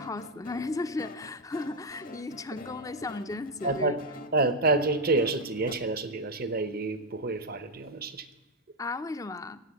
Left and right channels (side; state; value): both; normal; correlation 0.04